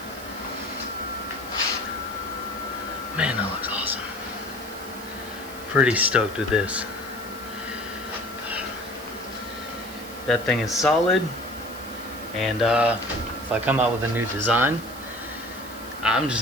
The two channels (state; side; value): noise; right; hiss, 17 dB below the sound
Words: Man, that looks awesome. Pretty stoked with this. That thing is solid, and if I come out with a new design, I'm